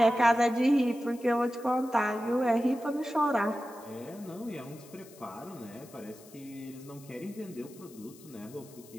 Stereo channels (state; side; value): noise; left; hiss, 22 dB below the sound